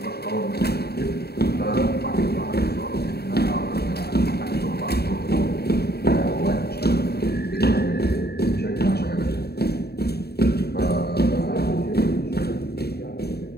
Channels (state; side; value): late; right; 0.47 ms